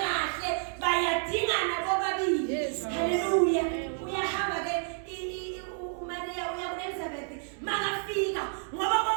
kahle bayadingana bobabili. Haleluya. Uyahamba ke uMaria uya kuElizabeth makafika ngoba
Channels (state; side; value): silent; left; digital silence